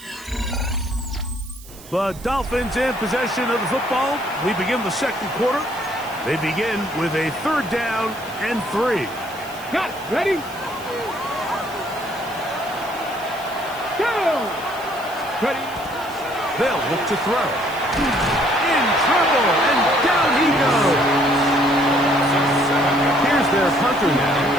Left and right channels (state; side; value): noise; right; hiss, 19 dB below the sound